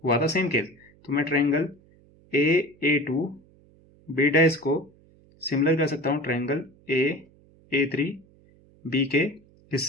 हुआ था सेम केस। तो मैं ट्रायंगल A2 B डैश को सिमिलर कर सकता हूं ट्रायंगल A3 B के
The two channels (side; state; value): right; noise; hum, 29 dB below the sound